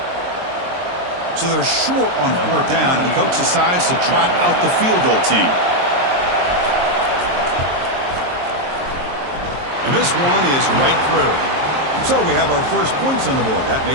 So they're short on fourth down, and the coach decides to trot out the field goal team. And this one is right through. So we have our first points on the board. That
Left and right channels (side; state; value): left; late; 23 ms